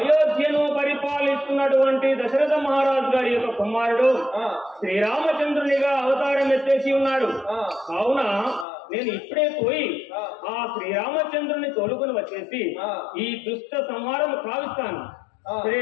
పరిపాలిస్తున్నటువంటి దశరథ మహారాజు గారి యొక్క కుమారుడు శ్రీరామచంద్రునిగా అవతారం ఎత్తేసి ఉన్నాడు. కావున నేను ఇప్పుడే పోయి ఆ శ్రీరామచంద్రుని తోలుకొని వచ్చేసి ఈ దుష్ట సంహారం కావిస్తాను. శ్రీ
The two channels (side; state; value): right; drops out; at 8.7 s